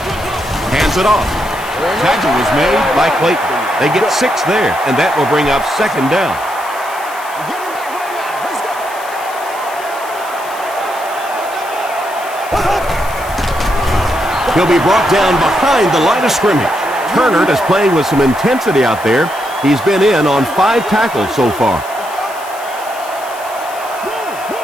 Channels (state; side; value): noise; left; hiss, 17 dB below the sound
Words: Hands it off. Tackle was made by Clayton. They get 6 there, and that will bring up second down. He'll be brought down behind the line of scrimmage. Turner is playing with some intensity out there. He's been in on 5 tackles so far.